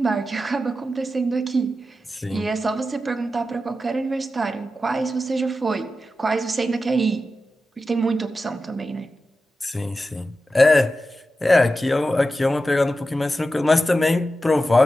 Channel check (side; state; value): both; normal; correlation 0.91